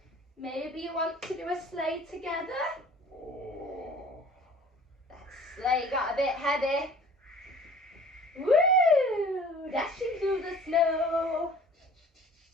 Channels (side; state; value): both; normal; correlation 0.48